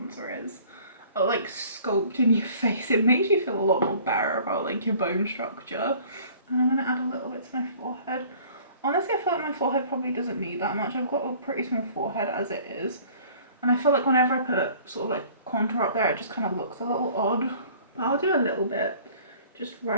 is. Oh, like sculpting your face. It makes you feel a lot more better about like your bone structure. And I'm gonna add a little bit to my forehead. Honestly, I feel like my forehead probably doesn't need that much. I've got a pretty small forehead as it is. And I feel like whenever I put sort of like contour up there, it just kind of looks a little odd. But I'll do a little bit, just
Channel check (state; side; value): inverted; both; correlation -0.51